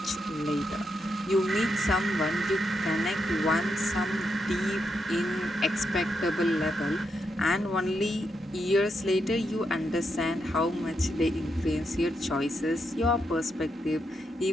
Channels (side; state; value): both; normal; correlation 0.82